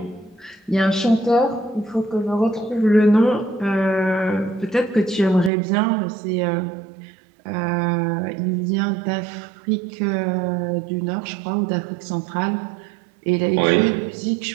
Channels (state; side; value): drops out; left; at 5.5 s